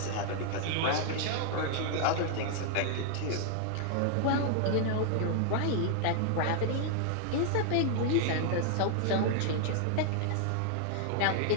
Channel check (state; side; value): different; both; correlation 0.00